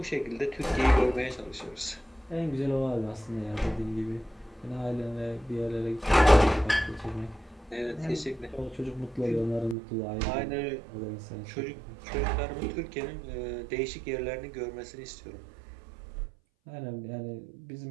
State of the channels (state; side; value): drops out; left; at 9.8 s